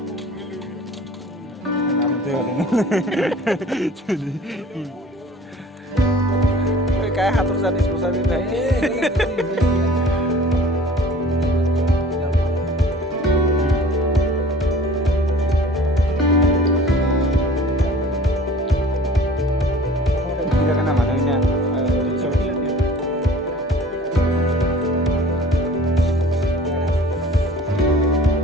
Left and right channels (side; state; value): both; normal; correlation 0.47